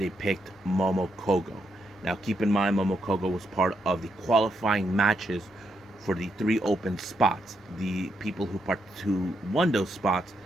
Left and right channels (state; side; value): normal; both; correlation 0.80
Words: picked Momo Kogo. Now, keep in mind, Momo Kogo was part of the qualifying matches for the 3 open spots. The people who won those spots,